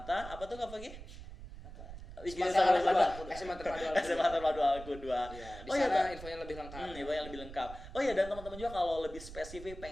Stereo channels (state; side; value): noise; right; rumble, 13 dB below the sound